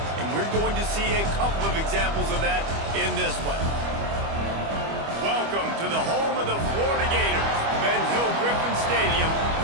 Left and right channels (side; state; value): left; late; 25 ms